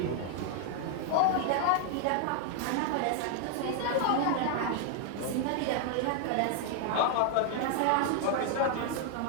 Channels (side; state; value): both; different; correlation 0.00